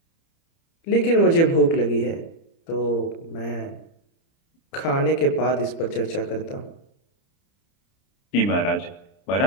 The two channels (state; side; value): late; right; 30 ms